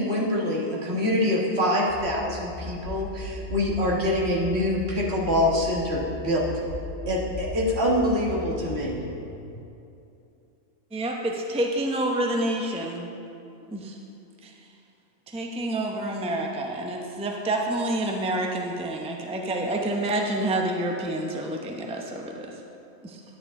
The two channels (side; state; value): both; normal; correlation 0.11